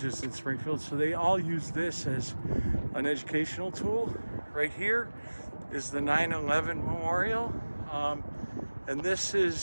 in Springfield, so they all use this as an educational tool. Right here is the 9/11 Memorial, and this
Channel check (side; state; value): both; inverted; correlation -1.00